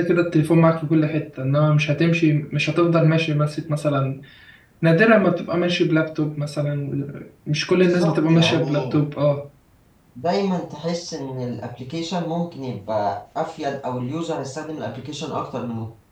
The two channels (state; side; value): identical; both; correlation 1.00